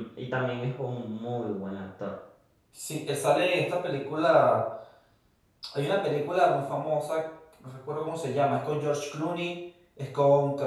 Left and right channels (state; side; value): identical; both; correlation 1.00